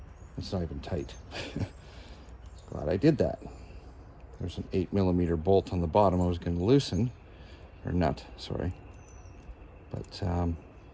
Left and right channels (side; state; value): both; identical; correlation 1.00